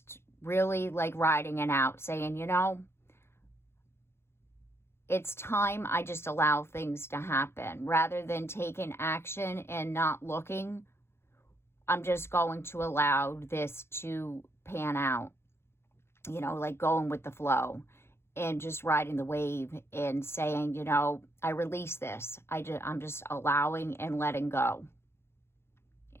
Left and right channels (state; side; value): late; right; 0.12 ms